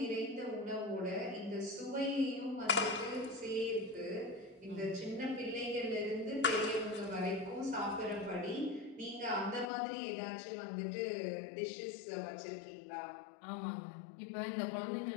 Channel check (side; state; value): right; drops out; at 9.7 s